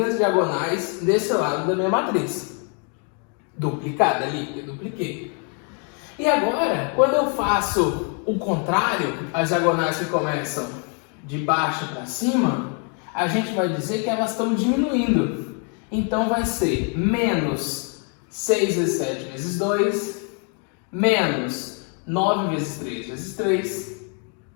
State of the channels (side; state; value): right; quieter; 40.0 dB